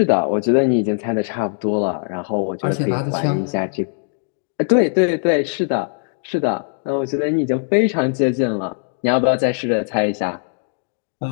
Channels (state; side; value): silent; right; digital silence